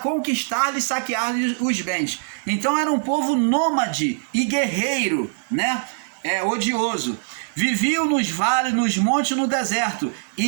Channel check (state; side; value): silent; left; digital silence